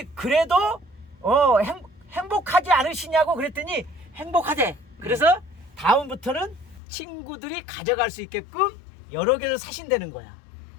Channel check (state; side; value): drops out; right; at 6.8 s